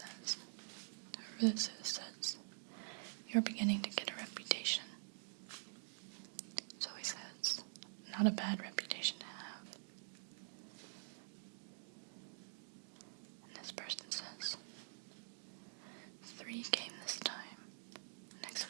whoever this is says, "You're beginning to get a reputation." Zoe says, "Not a bad reputation to have." And this person says, "3 came this time. Next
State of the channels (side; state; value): left; silent; digital silence